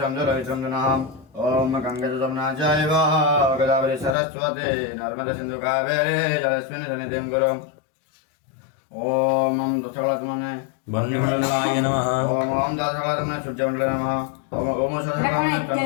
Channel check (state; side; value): drops out; right; at 4.2 s